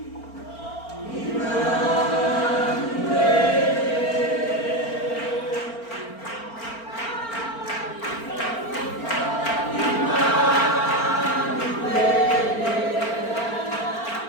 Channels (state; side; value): late; right; 4.4 ms